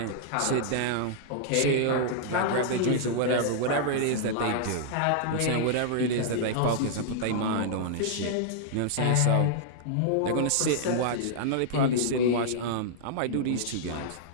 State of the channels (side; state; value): both; different; correlation -0.02